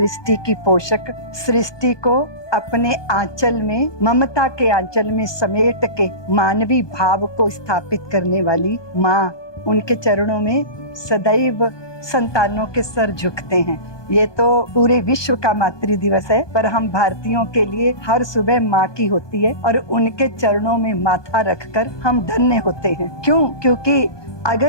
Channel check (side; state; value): right; late; 1.2 ms